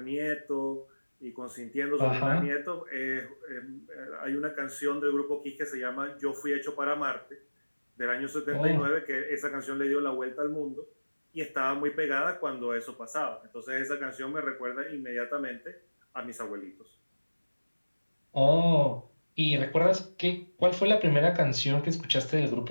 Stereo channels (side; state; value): both; inverted; correlation -1.00